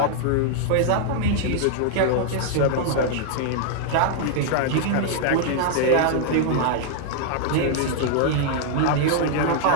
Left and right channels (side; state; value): both; different; correlation 0.00